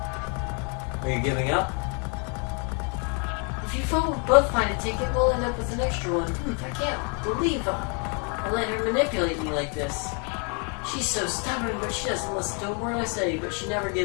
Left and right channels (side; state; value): right; quieter; 37.3 dB